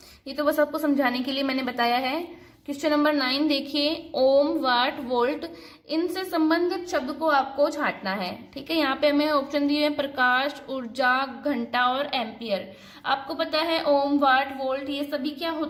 ये तो बस आपको समझाने के लिए मैंने बताया है। क्वेश्चन नंबर 9 देखिए, ओम, वाट, वोल्ट, इनसे संबंधित शब्द को आपको छांटना है। ठीक है, यहाँ पे हमें ऑप्शन दिए हैं, प्रकाश, ऊर्जा, घंटा और एम्पियर। आपको पता है ओम, वाट, वोल्ट ये सभी क्या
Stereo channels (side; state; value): both; identical; correlation 1.00